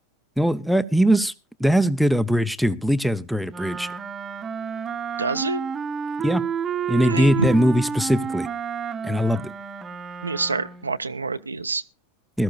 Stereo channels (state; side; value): normal; both; correlation 0.75